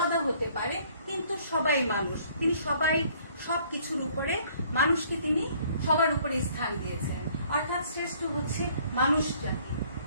হতে পারে, কিন্তু সবাই মানুষ। তিনি সব কিছুর উপরে মানুষকে তিনি সবার উপরে স্থান দিয়েছেন। অর্থাৎ শ্রেষ্ঠ হচ্ছে মানুষ জাতি।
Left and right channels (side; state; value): both; inverted; correlation -0.60